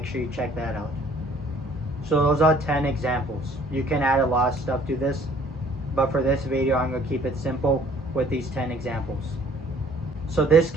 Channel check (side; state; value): both; normal; correlation 0.57